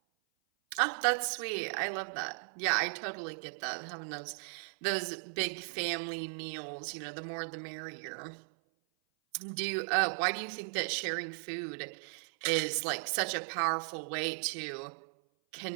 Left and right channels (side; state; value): left; silent; 54 dB below the other